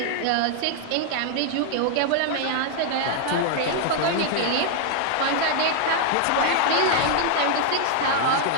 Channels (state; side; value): different; both; correlation 0.00